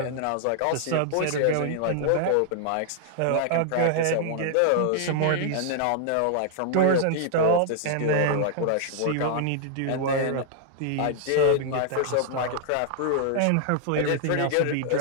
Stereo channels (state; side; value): different; both; correlation -0.01